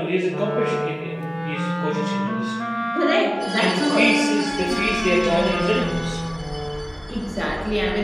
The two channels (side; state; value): both; identical; correlation 1.00